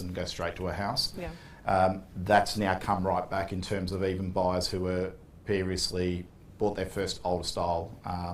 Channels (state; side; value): identical; both; correlation 1.00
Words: and go straight to a house. Yeah. That's now come right back in terms of even buyers who were previously bought their first older style